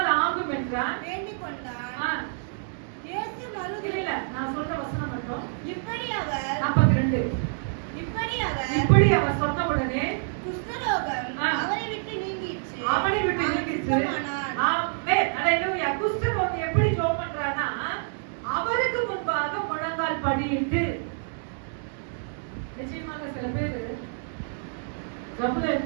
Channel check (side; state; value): left; silent; digital silence